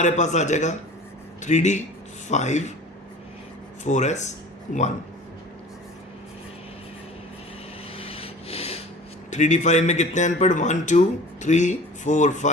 पास आ जाएगा 3D 5 4s 1। 3D 5 में कितने अनपढ़ 1 2 3 4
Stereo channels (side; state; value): both; normal; correlation 0.42